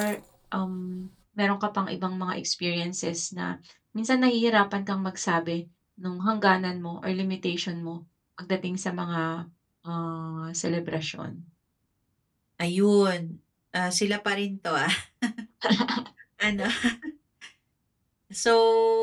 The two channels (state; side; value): identical; both; correlation 1.00